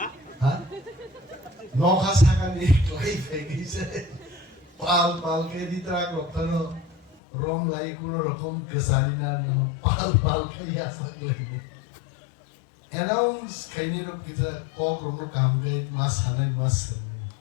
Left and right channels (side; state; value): right; drops out; at 7.2 s